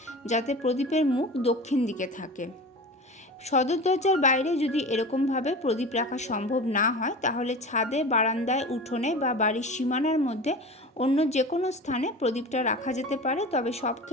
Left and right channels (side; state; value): both; normal; correlation 0.33